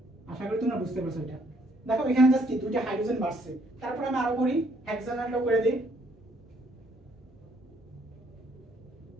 আশা করি তোমরা বুঝতে পারছো এটা। দেখো এখানে জাস্ট কি 2টা হাইড্রোজেন বাড়ছে, তারপর আমি আরো করি হেক্সানেলটা করে দেই।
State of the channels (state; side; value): normal; both; correlation 0.67